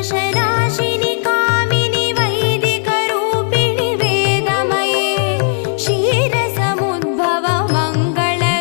कामिनि वैदिकरूपिणि वेदमये क्षीरसमुद्भव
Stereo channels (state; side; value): silent; right; digital silence